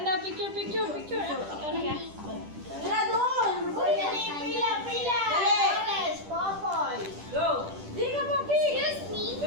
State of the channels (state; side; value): late; left; 10 ms